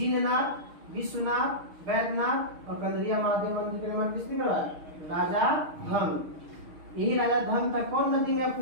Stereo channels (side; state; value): left; late; 6.4 ms